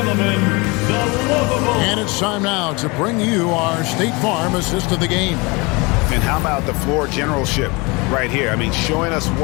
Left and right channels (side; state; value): right; quieter; 26.8 dB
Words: the lovable. And it's time now to bring you our State Farm assist of the game. And how about the floor generalship right here? I mean, showing us